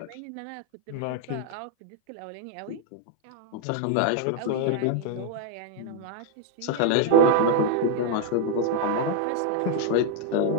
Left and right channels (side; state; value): both; different; correlation 0.00